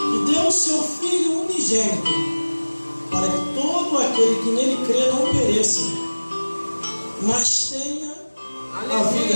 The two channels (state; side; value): inverted; both; correlation -1.00